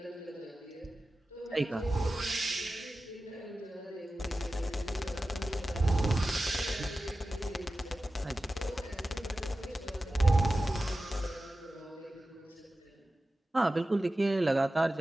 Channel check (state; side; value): normal; both; correlation 0.94